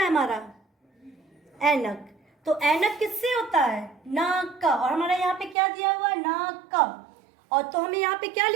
हमारा? ऐनक। तो ऐनक किससे होता है? नाक का। और हमारा यहाँ पे क्या दिया हुआ है? नाक का। और तो हमें यहाँ पे क्या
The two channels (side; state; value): left; drops out; at 5.6 s